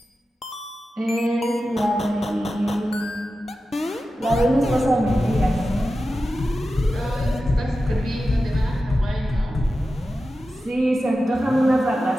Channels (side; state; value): both; normal; correlation 0.92